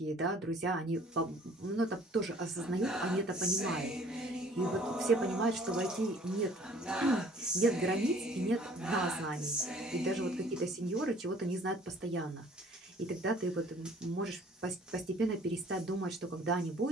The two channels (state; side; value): normal; both; correlation 0.54